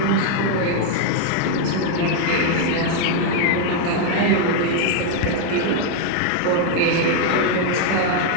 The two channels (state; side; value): different; both; correlation 0.01